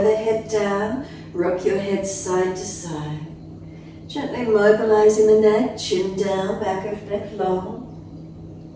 the head down, rock your head side to side. Gently mobilizing the neck, chin down, back of neck long.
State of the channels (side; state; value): both; identical; correlation 1.00